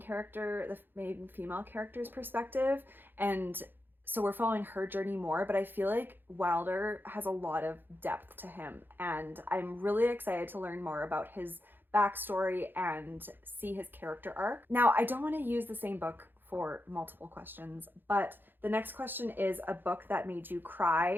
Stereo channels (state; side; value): late; left; 0.096 ms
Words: the main female character's perspective, and so we're following her journey more, but I feel like Wilder has a lot of depth to him, and I'm really excited to learn more about his backstory and see his character arc. Now, I don't want to use the same book for multiple questions, but the next question is a book that made you